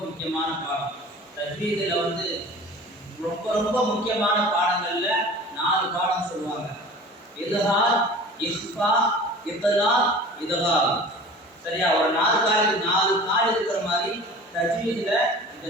முக்கியமான பாடம். தஜ்வீதுல ரொம்ப ரொம்ப முக்கியமான பாடங்கள்ல 4 பாடம் சொல்லுவாங்க. இல்ஹார், இஃபா, இத்லாக், இத்காம். சரியா? ஒரு 4 கால் இருக்கிற மாதிரி தஜ்வீதுல இந்த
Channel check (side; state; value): both; normal; correlation 0.41